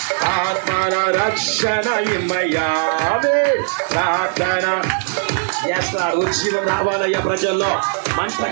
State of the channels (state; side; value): silent; left; 65 dB below the other